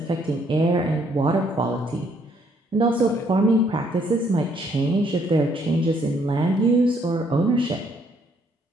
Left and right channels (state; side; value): normal; both; correlation 0.68